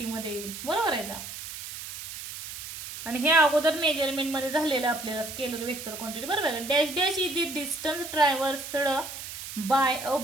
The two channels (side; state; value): right; noise; hiss, 10 dB below the sound